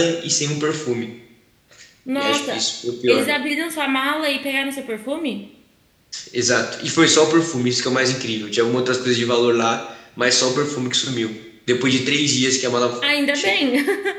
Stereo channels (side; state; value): both; identical; correlation 1.00